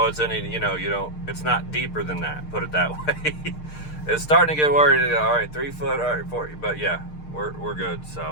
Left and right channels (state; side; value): late; right; 6.6 ms